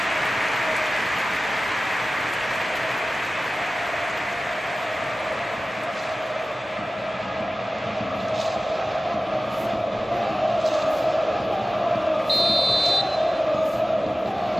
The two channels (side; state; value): both; normal; correlation 0.96